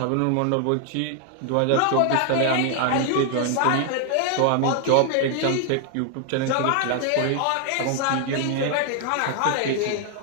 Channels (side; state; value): both; different; correlation 0.00